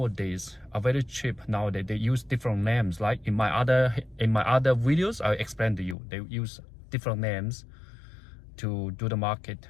are very cheap nowadays. They use different names. Like in my other videos, I explained to you, they use different names to do the market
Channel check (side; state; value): right; drops out; at 6.0 s